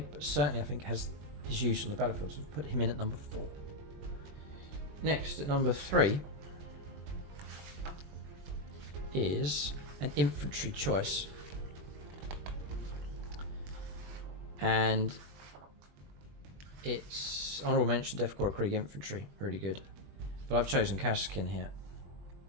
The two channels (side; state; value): left; late; 20 ms